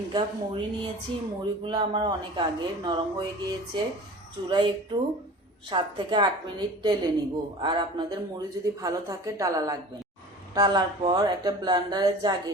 কাপ মুড়ি নিয়েছি। মুড়িগুলো আমার অনেক আগে নরম হয়ে গিয়েছে। চুলায় একটু 7 থেকে 8 মিনিট টেলে নিব। আর আপনাদের মুড়ি যদি ভালো থাকে টালা লাগবে না। টালার পর একটা ব্লেন্ডারের জাগে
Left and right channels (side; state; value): both; normal; correlation 0.40